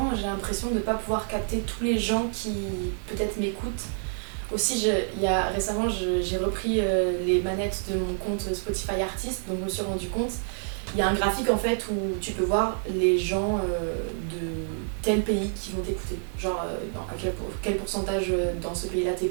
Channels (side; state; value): left; silent; digital silence